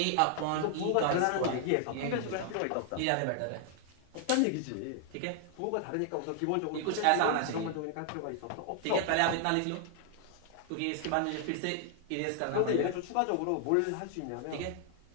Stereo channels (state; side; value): different; both; correlation 0.00